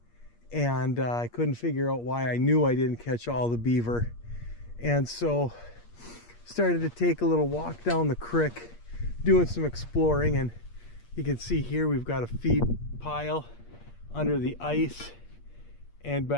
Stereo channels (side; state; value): right; late; 8.5 ms